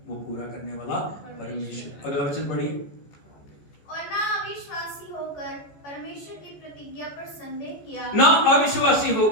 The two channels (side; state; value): right; late; 14 ms